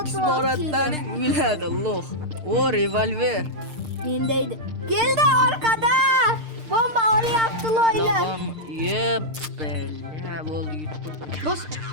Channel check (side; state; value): left; late; 6.6 ms